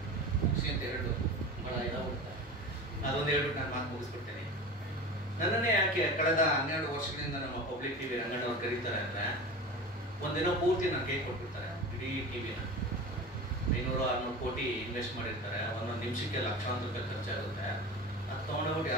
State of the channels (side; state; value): both; normal; correlation 0.32